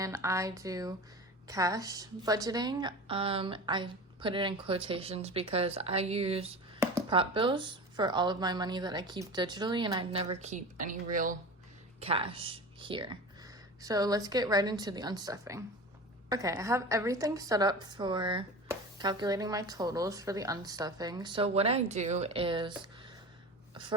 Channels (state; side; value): normal; both; correlation 0.32